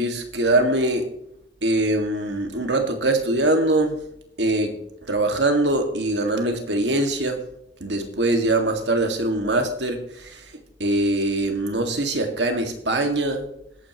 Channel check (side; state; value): both; normal; correlation 0.20